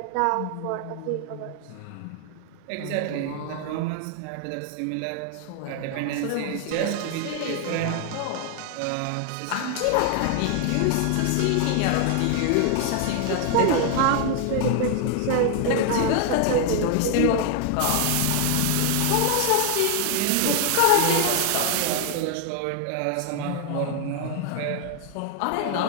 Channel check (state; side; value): different; both; correlation 0.00